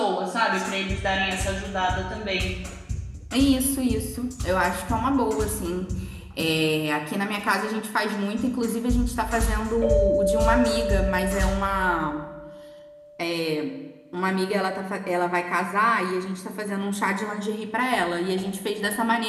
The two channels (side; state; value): both; identical; correlation 1.00